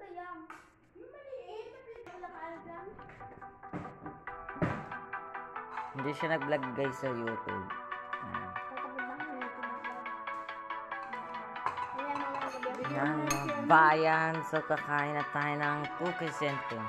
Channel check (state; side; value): identical; both; correlation 1.00